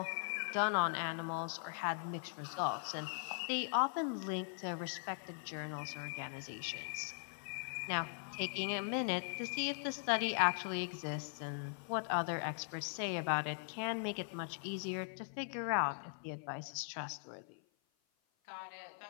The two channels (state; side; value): silent; right; 51 dB below the other